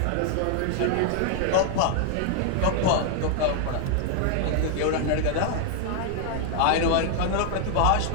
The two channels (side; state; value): both; different; correlation 0.00